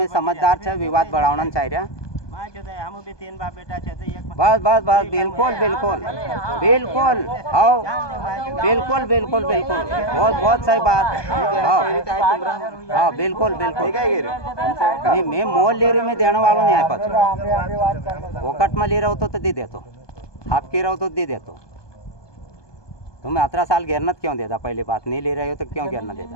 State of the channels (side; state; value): right; late; 1.2 ms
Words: समझदार छे विवाद बढ़ाना चाहिए मां जो है हम भी 3 बाप बेटा छे तो एक बस बस बस बिल्कुल बिल्कुल बिल्कुल आओ बिल्कुल बिल्कुल बिल्कुल बहुत बहुत सही बात हाँ बिल्कुल बिल्कुल नहीं मैं मोल ले रही मैं देने वालों नहीं है पच वोकट में ले रहा हो तो दे दे तो आपके रहो तो दे दे तो तुम 18 साल घेरनत क्यों देता पहली बात नहीं ले रहे हो तो क्यों घेरना देता